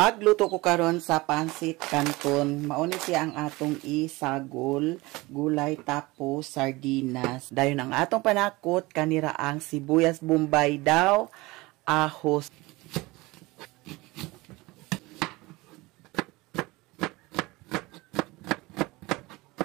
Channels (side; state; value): left; quieter; 22.0 dB